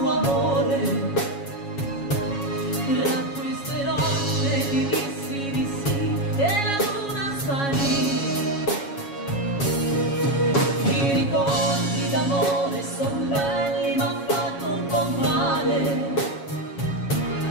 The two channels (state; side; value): late; right; 7.2 ms